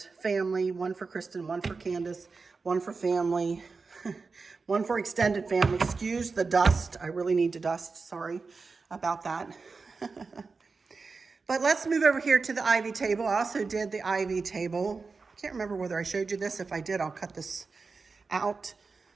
Family, one for Kristen, one for Candace, one for family, one for extended family. Excuse the dust. I really need to dust. Sorry about that. But let's move over here to the ivy table. I also did the ivy table. I can't remember whether I showed you this. If I did, I'll cut this out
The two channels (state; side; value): quieter; left; 4.4 dB